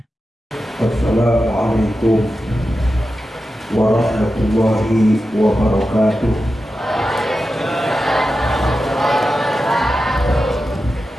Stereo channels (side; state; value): both; normal; correlation 0.91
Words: Assalamualaikum warahmatullahi wabarakatuh.